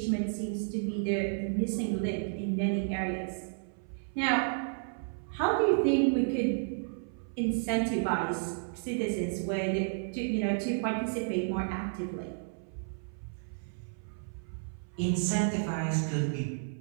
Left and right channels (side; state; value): left; silent; 56 dB below the other